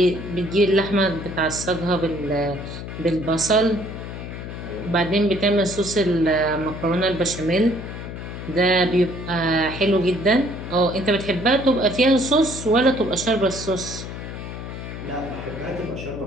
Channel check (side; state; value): left; noise; hum, 9 dB below the sound